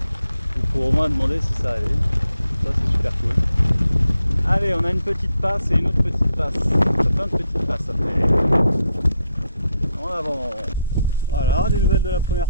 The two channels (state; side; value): inverted; both; correlation -0.79